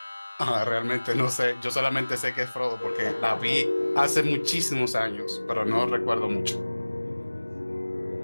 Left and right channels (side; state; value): both; inverted; correlation -1.00